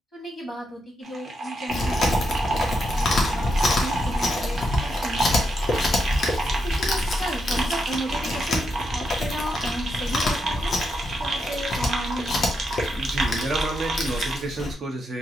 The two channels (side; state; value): both; normal; correlation 0.82